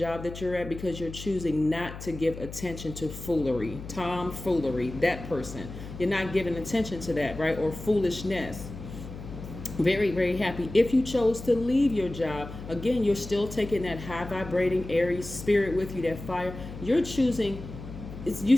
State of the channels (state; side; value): noise; left; hum, 11 dB below the sound